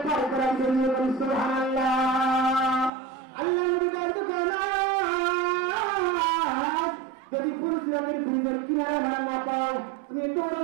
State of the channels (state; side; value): drops out; left; at 2.9 s